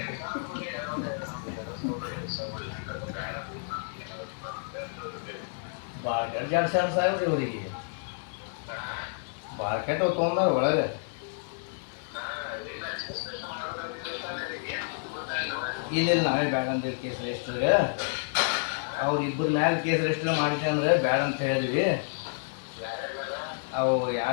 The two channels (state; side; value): silent; right; digital silence